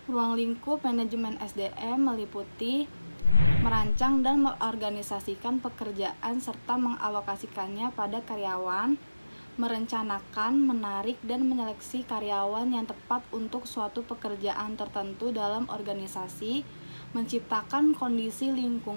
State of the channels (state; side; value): inverted; both; correlation -0.97